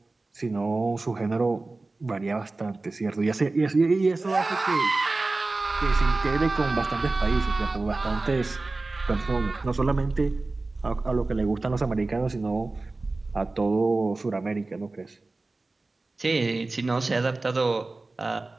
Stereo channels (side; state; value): left; quieter; 3.3 dB